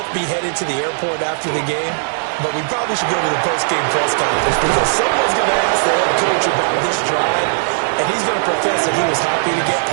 be headed to the airport after the game, but we probably should go to the post-game press conference because someone's going to ask the head coach about this drive, and he's going to profess that he was happy to get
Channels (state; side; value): silent; left; 68 dB below the other